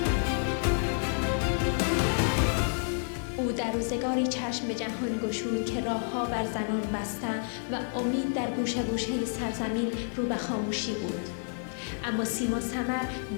در روزگاری چشم به جهان گشود که راه‌ها بر زنان بسته و امید در گوشه گوشه سرزمین رو به خاموشی بود. اما سیما سمر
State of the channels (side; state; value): right; silent; 58 dB below the other